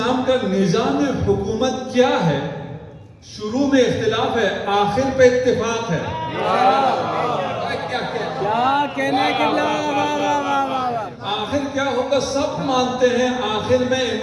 کا نظام حکومت کیا ہے؟ شروع میں اختلاف ہے، آخر پہ اتفاق ہے۔ کیا کہنے کی آخر کیا ہوگا؟ سب مانتے ہیں آخر میں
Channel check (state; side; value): identical; both; correlation 1.00